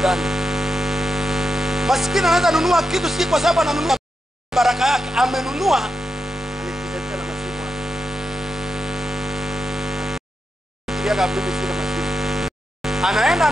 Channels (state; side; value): normal; both; correlation 0.87